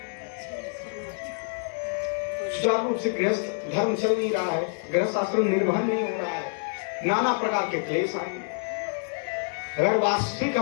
सुचारू रूप से गृहस्थ धर्म चल नहीं रहा है, गृहस्थ आश्रम निर्वहन नहीं हो रहा है, नाना प्रकार के क्लेश आएंगे। अगर वास्तविक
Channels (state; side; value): silent; right; digital silence